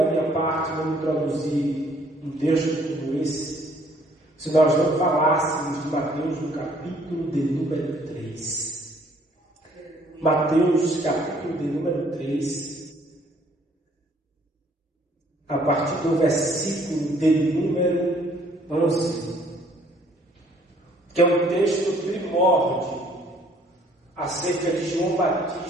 minha parte não introduzir um texto como esse se nós não falássemos de Mateus no capítulo de número 3. Mateus, capítulo de número 3, a partir do versículo de número 11, que é um texto primórdio acerca de João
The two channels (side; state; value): both; normal; correlation 0.61